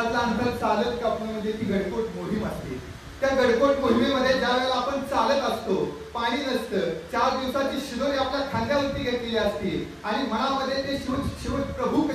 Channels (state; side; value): identical; both; correlation 1.00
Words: अंतर चालत कापणं म्हणजे ती गडकोट मोहीम असते. त्या गडकोट मोहिमेमध्ये ज्या वेळेला आपण चालत असतो, पाणी नसतं, 4 दिवसाची शिदोरी आपल्या खांद्यावरती घेतलेली असते आणि मनामध्ये ते शिव प्रभू